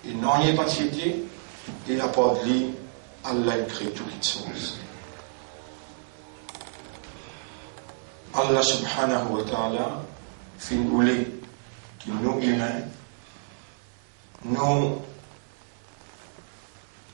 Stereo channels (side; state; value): left; silent; digital silence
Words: il n'en est pas tiété, et la part de lui, Allah il crée toutes les choses. Allah subhanahu wa ta'ala, fin voulait qu'il nous humains, nos